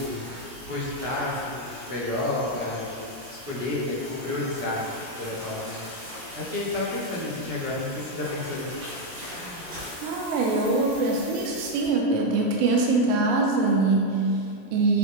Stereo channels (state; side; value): late; left; 17 ms